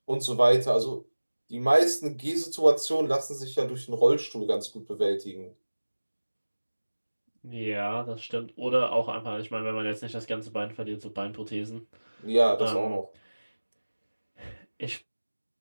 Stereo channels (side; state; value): both; inverted; correlation -1.00